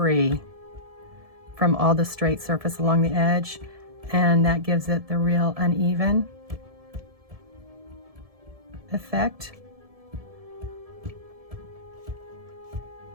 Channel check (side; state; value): left; late; 1.7 ms